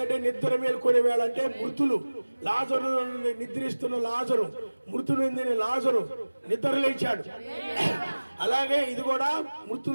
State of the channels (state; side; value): inverted; both; correlation -1.00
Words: నిద్ర మేల్కొనే వేళ అంటే మృతులు లాజరు నిద్రిస్తున్న లాజరు మృతులు లాజరు నిద్ర లేచాడు. అలాగే ఇది కూడా